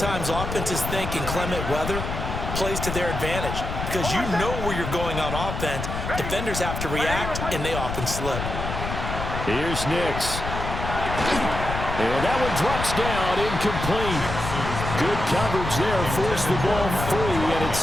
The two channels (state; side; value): noise; left; rumble, 5 dB below the sound